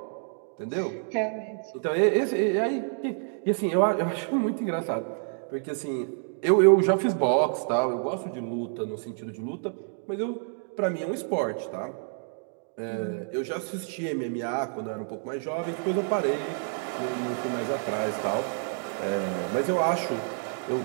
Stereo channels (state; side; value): silent; left; 59 dB below the other